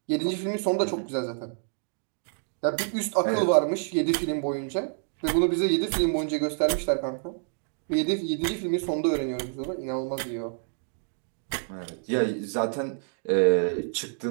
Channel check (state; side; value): silent; left; digital silence